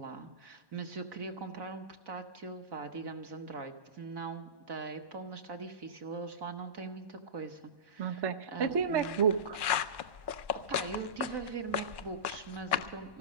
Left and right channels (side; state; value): left; late; 1.1 ms